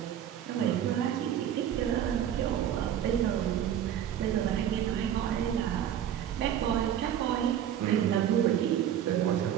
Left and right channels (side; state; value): left; quieter; 10.2 dB